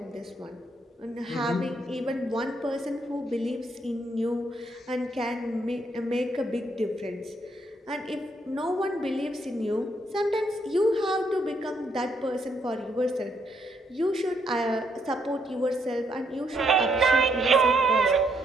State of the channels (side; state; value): both; normal; correlation 0.74